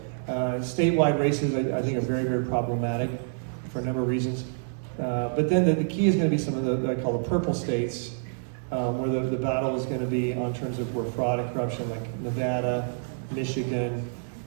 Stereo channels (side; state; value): left; silent; digital silence